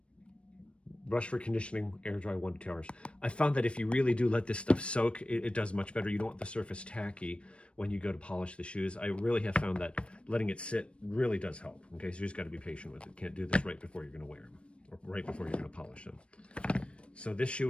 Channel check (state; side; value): late; right; 0.059 ms